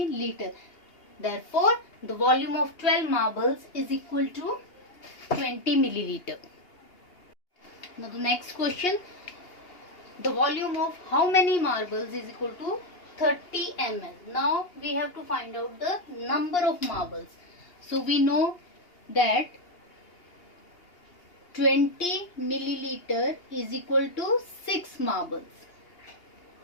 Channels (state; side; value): late; right; 2.8 ms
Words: Therefore, the volume of 12 marbles is equal to 20 milliliter. Now the next question. The volume of how many marbles is equal to 30 ml. Now we have to find out the number of marbles. So we know that 20 milliliter is equal to 6 marbles.